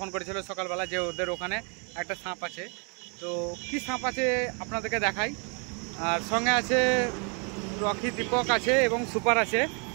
করেছিল সকালবেলা যে ওদের ওখানে একটা সাপ আছে। তো কি সাপ আছে আপনাদেরকে দেখাই। আর সঙ্গে আছে রকি, দীপক আছে এবং সুপার আছে।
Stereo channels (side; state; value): left; quieter; 36.0 dB